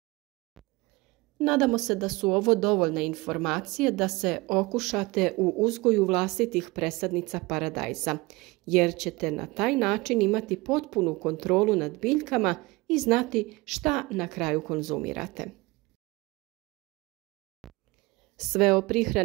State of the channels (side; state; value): left; quieter; 22.8 dB